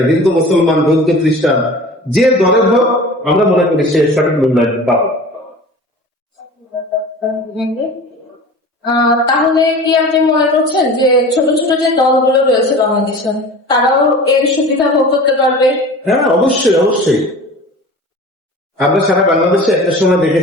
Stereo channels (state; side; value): normal; both; correlation 0.38